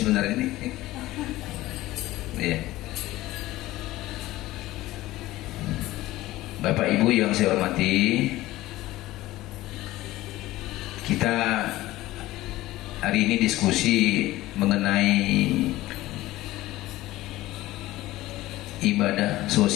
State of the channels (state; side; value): quieter; right; 17.0 dB